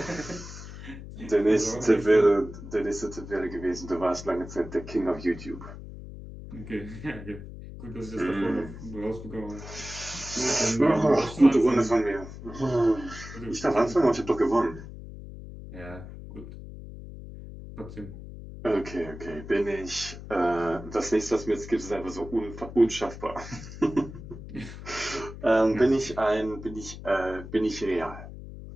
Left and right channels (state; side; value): noise; left; hum, 12 dB below the sound